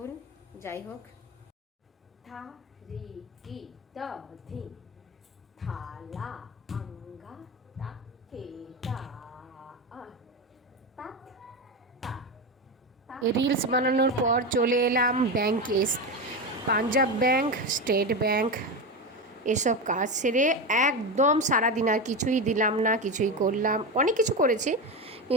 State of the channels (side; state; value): both; normal; correlation 0.18